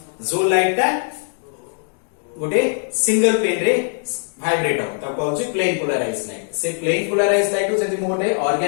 जो लाइट ता गोटे सिंगल पेन रे वाइब्रेट हो तब कहउची प्लेन पोलाराइज लाइट से प्लेन पोलाराइज लाइट को जदि मु गोटे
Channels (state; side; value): silent; right; 65 dB below the other